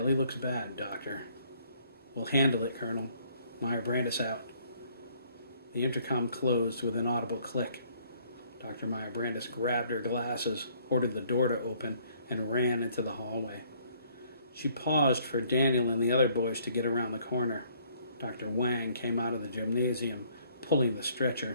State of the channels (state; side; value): inverted; both; correlation -0.63